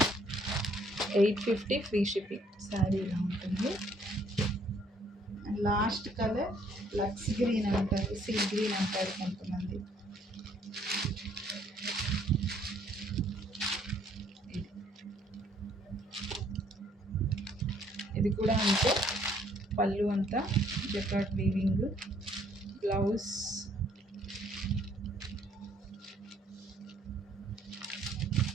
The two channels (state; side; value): normal; both; correlation 0.64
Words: 850 ఫ్రీ షిప్పింగ్. శారీ ఇలా ఉంటుంది. And last colour lux green అంటారు, సీ గ్రీన్ అంటారు కొంతమంది. ఇది కూడా అంతే. పళ్ళు అంతా జకార్డ్ వీవింగ్, బ్లౌజ్